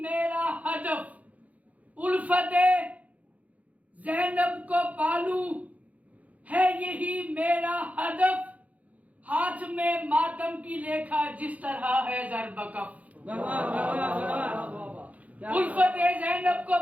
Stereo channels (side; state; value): left; late; 0.071 ms